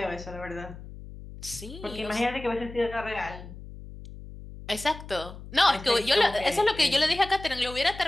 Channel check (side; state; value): left; noise; hum, 14 dB below the sound